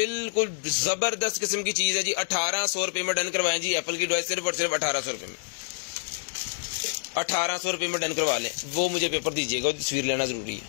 जबरदस्त किस्म की चीज है जी, 1800 रुपए में डन करवाएं जी। एप्पल की डिवाइस सिर्फ और सिर्फ 1800 रुपए में, 1800 रुपए में डन करवा लें। वो मुझे पेपर दीजिएगा, तस्वीर लेना जरूरी है,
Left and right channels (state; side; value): silent; right; 60 dB below the other